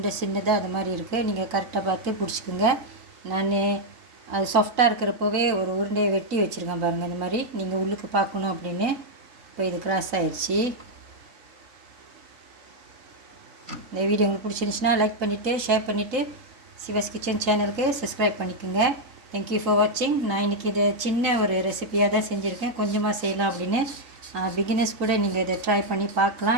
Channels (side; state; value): left; late; 3.8 ms